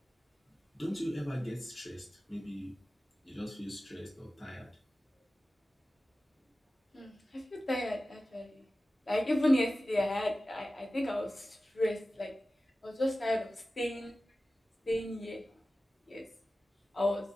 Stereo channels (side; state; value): both; normal; correlation 0.95